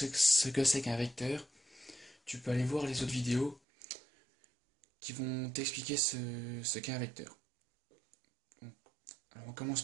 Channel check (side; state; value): left; drops out; at 3.6 s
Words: que c'est qu'un vecteur, tu peux aller voir les autres vidéos qui vont t'expliquer ce qu'est un vecteur. Alors on commence